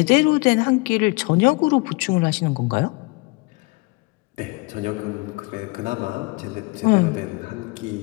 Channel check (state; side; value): quieter; right; 26.7 dB